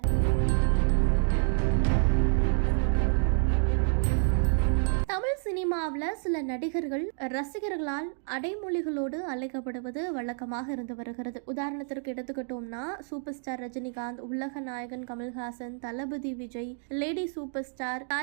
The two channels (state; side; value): silent; left; 59 dB below the other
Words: தமிழ் சினிமாவில் சில நடிகர்கள் ரசிகர்களால் அடைமொழிகளோடு அழைக்கப்படுவது வழக்கமாக இருந்து வருகிறது. உதாரணத்திற்கு எடுத்துக்கிட்டோம்னா சூப்பர் ஸ்டார் ரஜினிகாந்த், உலக நாயகன் கமல்ஹாசன், தளபதி Vijay, lady super star